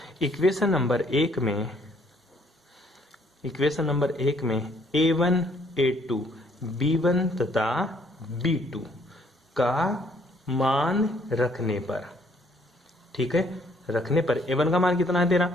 इक्वेशन नंबर 1 में a1 a2 b1 तथा b2 का मान रखने पर, ठीक है, रखने पर a1 का मान कितना है तेरा,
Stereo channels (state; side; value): normal; both; correlation 0.65